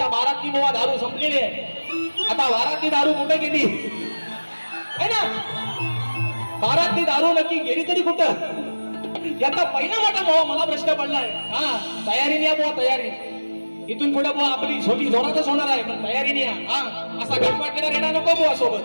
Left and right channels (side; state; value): both; inverted; correlation -1.00